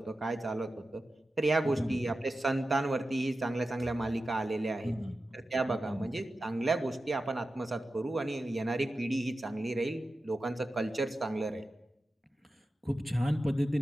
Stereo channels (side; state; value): both; normal; correlation 0.93